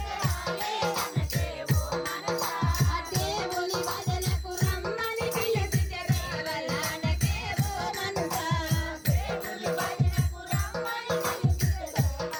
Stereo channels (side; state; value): both; identical; correlation 1.00